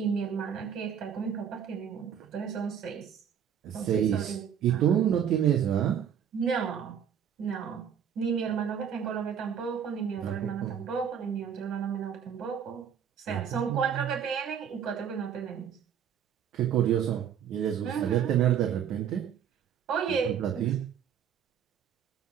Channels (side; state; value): left; quieter; 8.4 dB